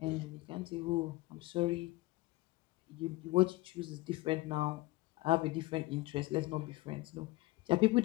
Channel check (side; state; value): right; quieter; 20.1 dB